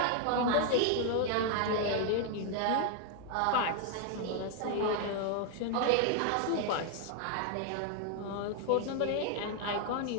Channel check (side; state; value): both; different; correlation 0.00